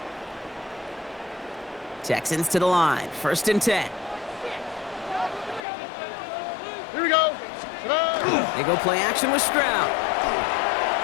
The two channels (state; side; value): drops out; right; at 5.6 s